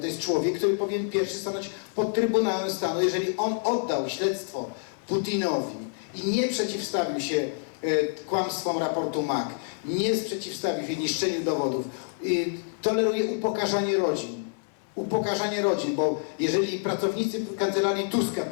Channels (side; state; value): right; silent; 60 dB below the other